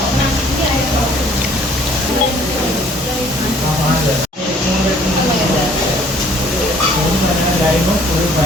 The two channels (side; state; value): both; normal; correlation 0.57